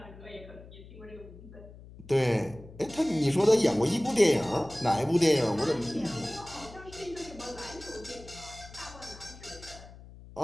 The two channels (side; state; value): left; noise; hum, 18 dB below the sound